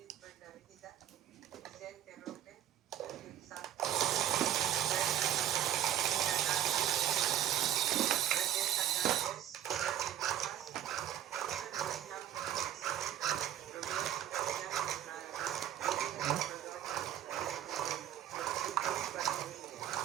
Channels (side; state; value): left; quieter; 11.4 dB